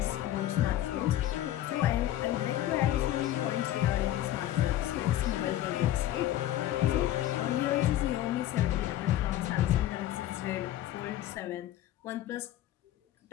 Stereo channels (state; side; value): quieter; right; 13.3 dB